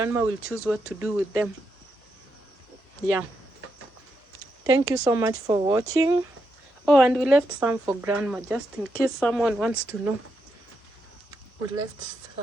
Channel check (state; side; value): normal; both; correlation 0.83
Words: will choose what to do with them. Yeah. Thank you so much for watching. Oh, and we left some for grandma, just in case someone wants to know. We left